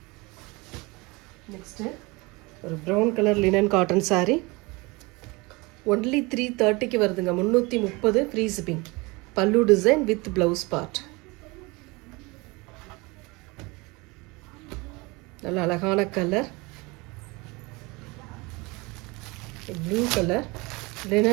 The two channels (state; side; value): quieter; left; 25.2 dB